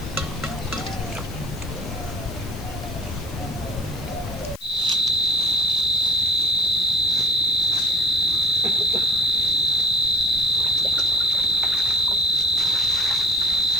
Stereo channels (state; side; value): noise; left; hiss, 20 dB below the sound